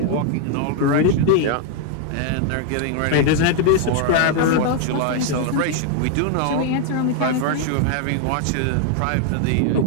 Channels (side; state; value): both; different; correlation 0.00